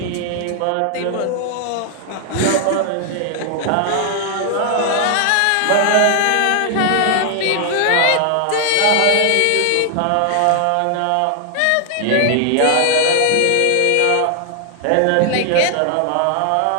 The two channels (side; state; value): both; different; correlation 0.00